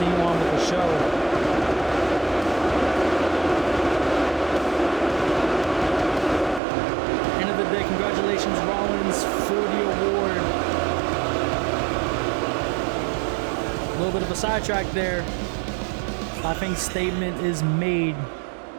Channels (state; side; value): drops out; left; at 6.6 s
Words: on with the show. End of the day, congratulations Rollins for the award. A little bit of a sidetrack there. I think statement is made,